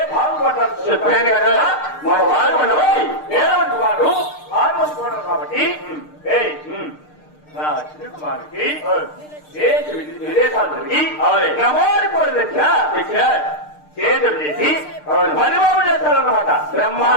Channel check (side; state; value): right; late; 6.6 ms